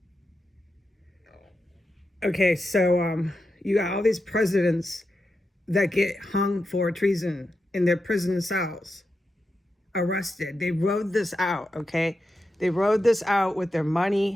Okay, so you got all these presidents that get hung for treason in their prison cells, arrested. They rode this out, okay? They rode this out with their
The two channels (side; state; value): both; normal; correlation 0.88